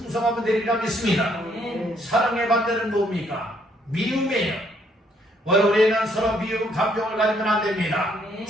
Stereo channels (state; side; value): normal; both; correlation 0.68